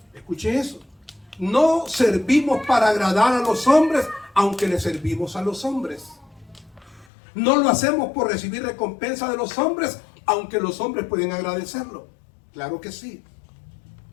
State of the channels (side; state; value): right; drops out; at 7.1 s